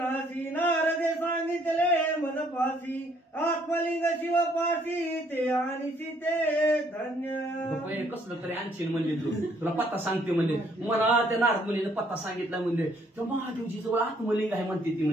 नारदे सांगितले मनपाशी, आत्मलिंग शिवपाशी ते आणि सीते धन्य. कसलं तरी आणशील म्हणले तुला पत्ता सांगते म्हणले, मला त्या नारद मुलीने पत्ता सांगितला म्हणले, तर महादेवजी जवळ आत्मलिंग आहे म्हणते ती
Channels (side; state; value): both; normal; correlation 0.66